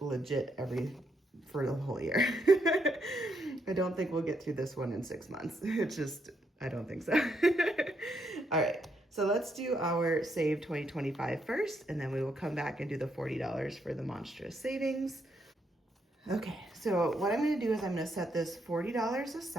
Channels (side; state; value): both; normal; correlation 0.77